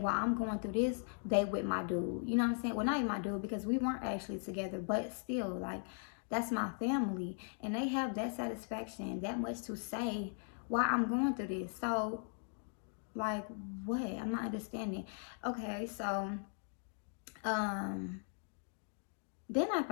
I'm going through this, they with my dude. You know what I'm saying? Well, not even my dude, because we weren't actually together, but still, like, that's my family, and they have that satisfaction, that much to say why I'm going through this. So, like, what? I'm not understanding. Okay, so um then I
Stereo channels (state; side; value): silent; right; 52 dB below the other